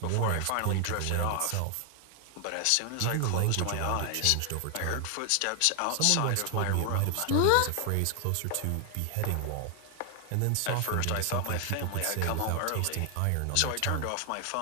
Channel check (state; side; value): different; both; correlation 0.00